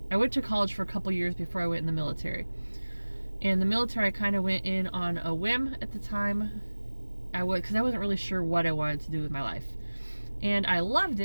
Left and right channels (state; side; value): inverted; both; correlation -1.00